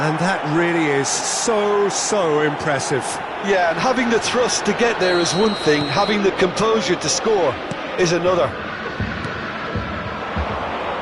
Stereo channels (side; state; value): both; identical; correlation 1.00